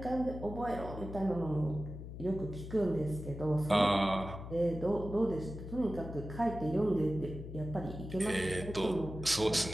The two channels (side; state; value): left; noise; hum, 10 dB below the sound